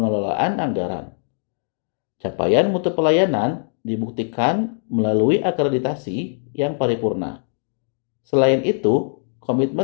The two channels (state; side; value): silent; right; digital silence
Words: anggaran. Capaian mutu pelayanan dibuktikan melalui akreditasi yang paripurna. Selain itu,